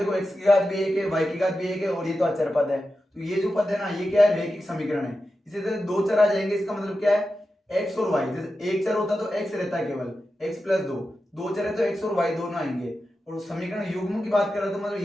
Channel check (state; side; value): normal; both; correlation 0.91